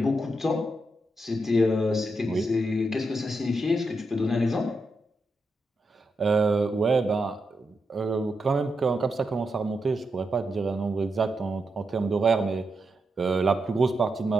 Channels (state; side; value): normal; both; correlation 0.84